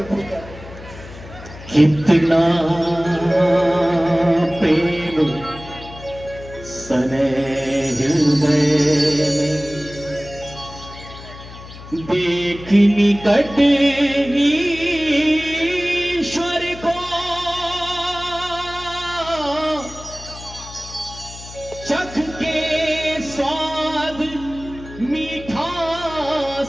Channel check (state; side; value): noise; left; hum, 15 dB below the sound